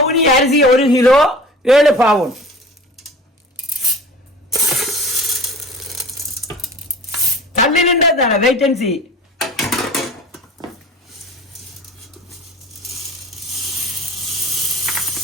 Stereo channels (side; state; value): both; normal; correlation 0.40